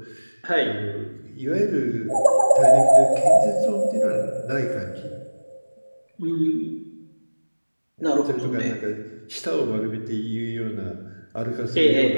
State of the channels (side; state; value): both; inverted; correlation -1.00